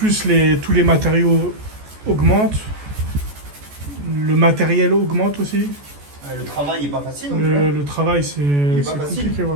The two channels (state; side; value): late; left; 14 ms